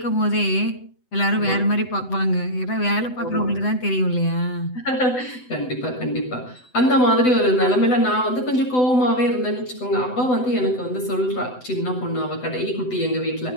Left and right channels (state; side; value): late; right; 7.9 ms